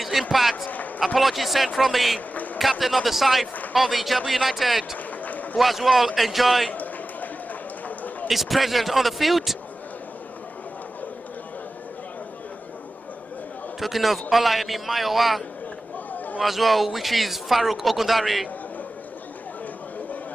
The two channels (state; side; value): normal; both; correlation 0.95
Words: impact. Apologies sent from the captain of the side of the IJEBU United, who as well enjoy his presence on the field. Talking of Olayemi Mayowa, who as well, which is Farouk Ogundari.